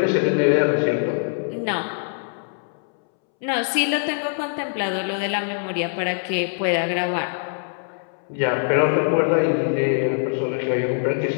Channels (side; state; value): right; silent; 63 dB below the other